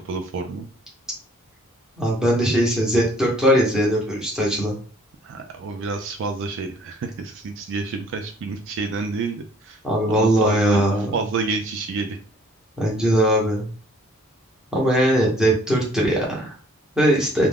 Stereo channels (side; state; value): both; normal; correlation 0.58